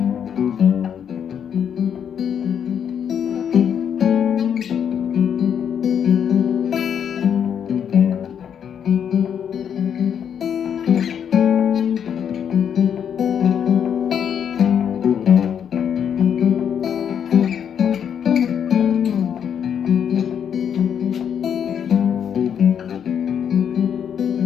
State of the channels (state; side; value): quieter; right; 8.3 dB